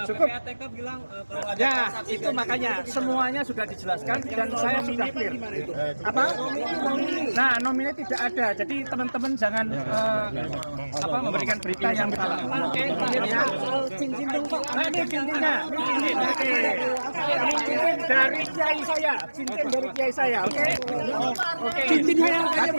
cukup. PPATK bilang kalau ada Ya, transaksi itu makanya semuanya sudah dijelaskan dan saya sudah clear. Apa? Nah, nominnya tidak ada. Jadi teman-teman jangan memberikan berita yang salah. Oke, clear ya. cincin dong Pak. Nah, ini cincinnya. Ini cincin. Oke. Ini cincin dari kiai saya. Cincin dari kiai saya. Oke. Oke. Cincinnya yang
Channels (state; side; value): inverted; both; correlation -1.00